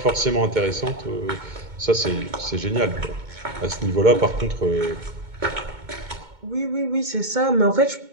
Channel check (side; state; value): left; late; 2.2 ms